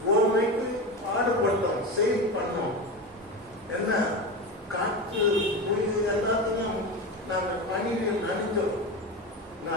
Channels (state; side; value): normal; both; correlation 0.22